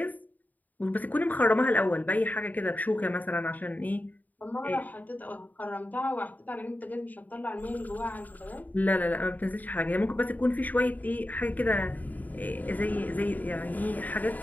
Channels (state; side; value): late; right; 0.082 ms